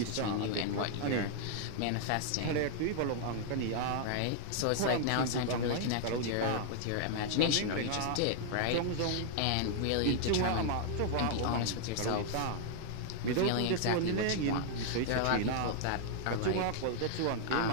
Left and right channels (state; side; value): different; both; correlation -0.01